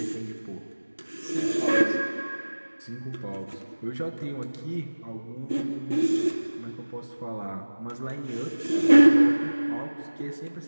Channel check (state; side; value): inverted; both; correlation -1.00